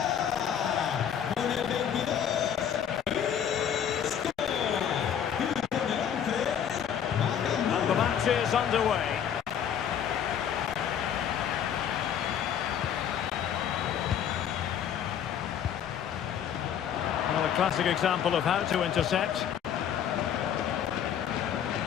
The match is underway. Well, a classic example of how to intercept.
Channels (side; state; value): right; quieter; 8.9 dB